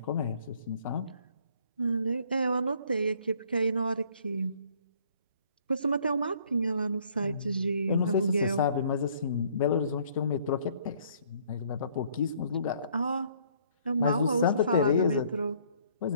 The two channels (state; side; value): inverted; both; correlation -0.61